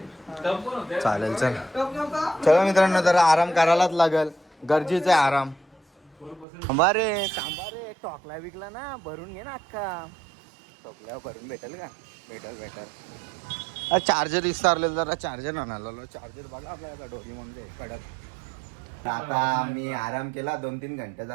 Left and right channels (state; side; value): drops out; left; at 6.5 s